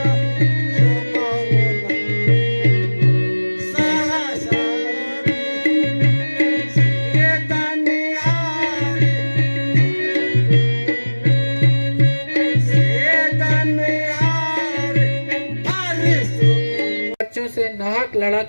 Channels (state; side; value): inverted; both; correlation -1.00